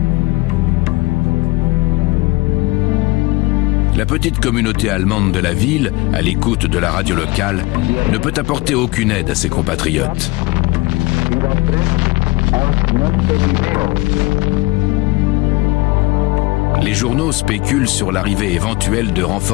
La petite communauté allemande de la ville, à l'écoute de la radio locale, ne peut apporter aucune aide à ses compatriotes. Les journaux spéculent sur l'arrivée éventuelle de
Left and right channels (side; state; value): right; quieter; 21.9 dB